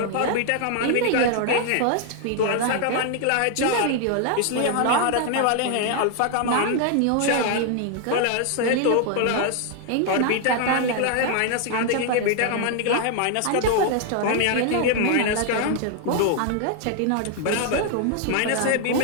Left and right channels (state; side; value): different; both; correlation 0.00